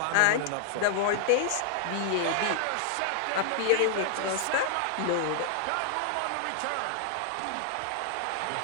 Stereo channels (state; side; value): different; both; correlation 0.00